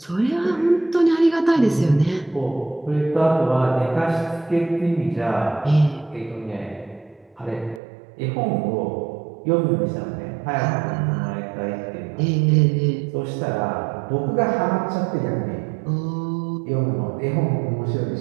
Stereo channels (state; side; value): drops out; left; at 7.8 s